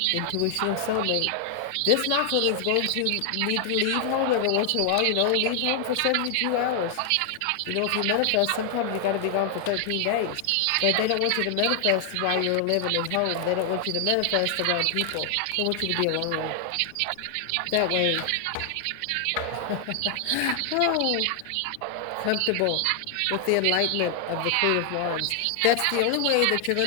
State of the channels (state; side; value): different; both; correlation 0.00